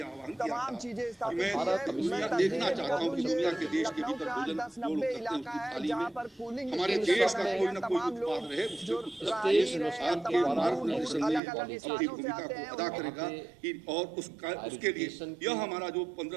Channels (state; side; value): drops out; left; at 11.4 s